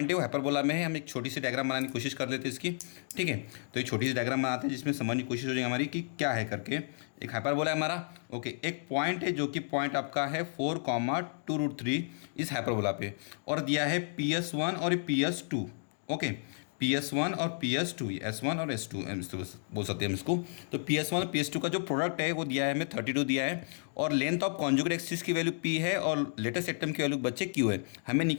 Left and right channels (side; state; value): right; silent; digital silence